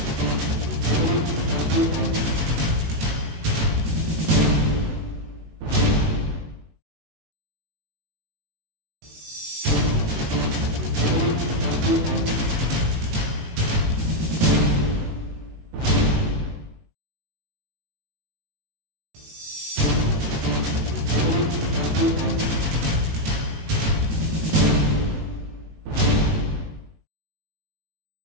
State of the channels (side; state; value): left; late; 19 ms